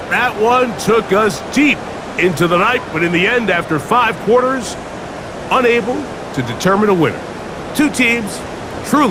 that one took us deep into the night, but in the end, after 5 quarters, unable to determine a winner. 2 teams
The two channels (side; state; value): both; identical; correlation 1.00